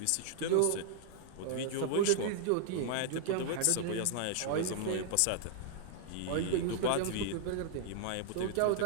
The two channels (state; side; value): different; both; correlation 0.00